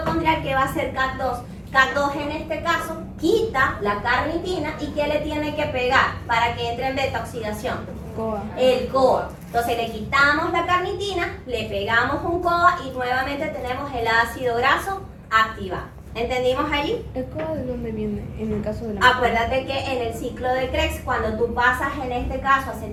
¿qué va a hacer CAD2? CAD2 en este caso quita la carnitina y ¿qué le tiene que pegar para que entre en beta oxidación? COA. El COA. Entonces le quitamos la carnitina, le pegamos un COA y nuevamente tenemos el ácido graso activado. ¿Entendimos allí? ¿El COA de dónde viene en el caso de la Acuérdate que en el ciclo de Krebs, cuando tú pasas en este caso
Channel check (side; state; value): both; identical; correlation 1.00